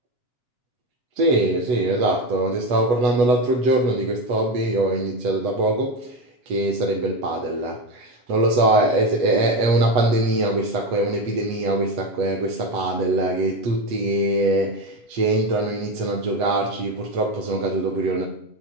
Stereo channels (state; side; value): late; left; 8.2 ms